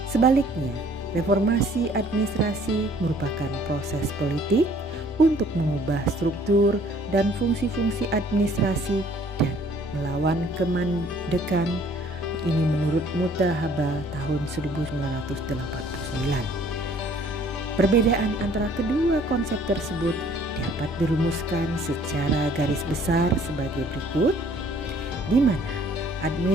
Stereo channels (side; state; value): both; normal; correlation 0.58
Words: Sebaliknya, reformasi administrasi merupakan proses politik untuk mengubah struktur dan fungsi-fungsi administrasi dan melawan kemandekan, ini menurut Mutahaba tahun 1989. Perbedaan antara kedua konsep tersebut dapat dirumuskan secara garis besar sebagai berikut, di mana